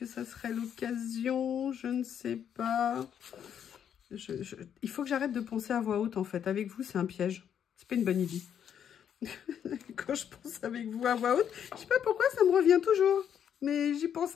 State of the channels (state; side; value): quieter; right; 8.8 dB